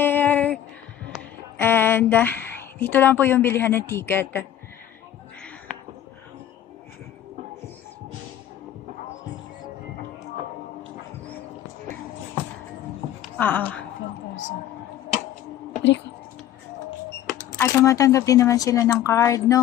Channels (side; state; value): right; quieter; 11.3 dB